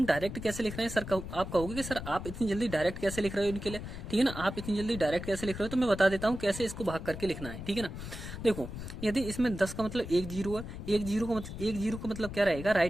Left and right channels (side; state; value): left; noise; rumble, 9 dB below the sound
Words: डायरेक्ट कैसे लिख रहे हैं सर, आप कहोगे कि सर आप इतनी जल्दी डायरेक्ट कैसे लिख रहे हो इनके लिए, ठीक है ना, आप इतनी जल्दी डायरेक्ट कैसे लिख रहे हो, तो मैं बता देता हूँ कैसे इसको भाग करके लिखना है, ठीक है ना। देखो यदि इसमें 10 का मतलब 1 जीरो है, 1 जीरो का मतलब क्या रहेगा,